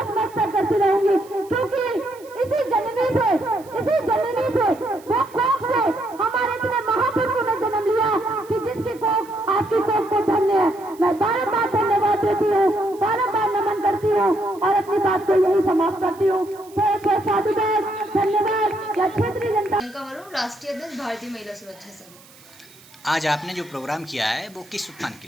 करती रहूंगी, क्योंकि इसी जननी से वो कोख से हमारे इतने महापुरुषों ने जन्म लिया कि जिसकी कोख आपकी कोख को धन्य है। मैं बारंबार धन्यवाद देती हूँ, बारंबार नमन करती हूँ और अपनी बात को यही समाप्त करती हूँ। साधुवाद, धन्यवाद। या क्षेत्रीय जनता राष्ट्रीय अध्यक्ष भारतीय महिला सुरक्षा संघ। आज आपने जो प्रोग्राम किया है वो किस उत्थान के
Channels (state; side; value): noise; right; hiss, 24 dB below the sound